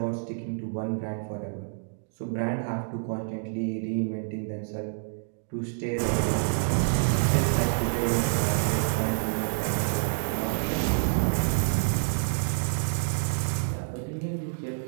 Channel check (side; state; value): left; silent; digital silence